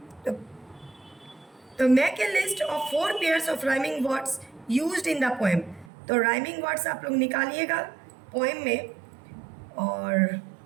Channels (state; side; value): drops out; left; at 5.9 s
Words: तो make a list of 4 pairs of rhyming words used in the poem. तो राइमिंग वर्ड्स आप लोग निकालिएगा पोएम में और